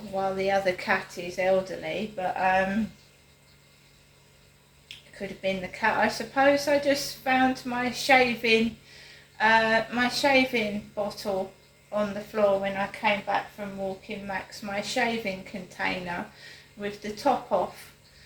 while the other cat is elderly, but it could have been the cat. I suppose I just found my shaving bottle on the floor when I came back from walking Max, my shaving container with the top off,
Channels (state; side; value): identical; both; correlation 1.00